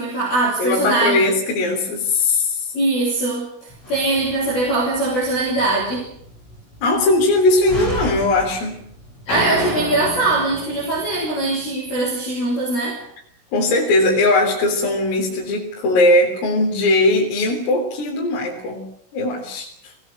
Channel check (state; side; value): late; right; 16 ms